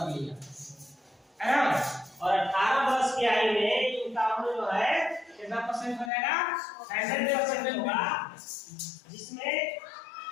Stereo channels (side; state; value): right; drops out; at 6.1 s